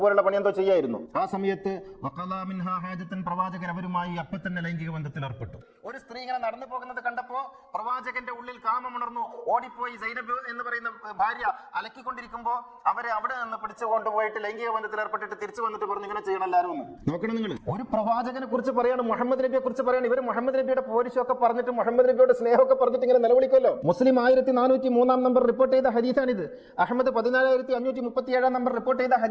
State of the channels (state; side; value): identical; both; correlation 1.00